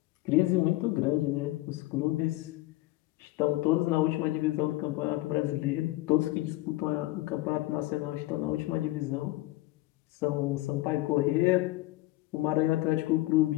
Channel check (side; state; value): right; quieter; 18.5 dB